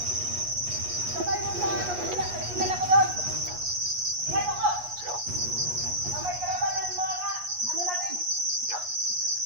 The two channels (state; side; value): late; left; 8.3 ms